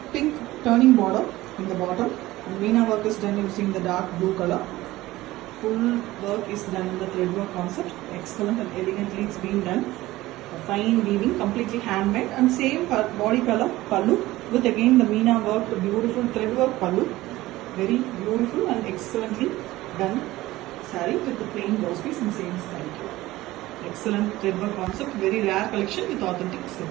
pink turning border in the bottom. And Meena work is done using the dark blue color. Full work is done in the thread work concept. Excellent and elegantly it's been done. A fine weaving, completely handmade, and same body color pallu with again the Meena work, the beautiful thread work pallu. Very beautiful and excellently done saree with the plain blouse piece in same saree. Excellent thread work concept, very rare collection with authentic silk.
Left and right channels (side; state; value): left; quieter; 17.5 dB